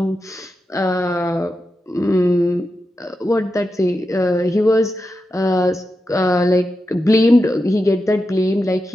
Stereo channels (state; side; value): normal; both; correlation 0.89